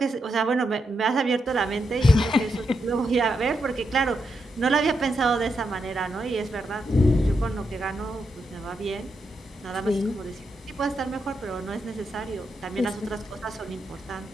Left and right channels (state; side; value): normal; both; correlation 0.83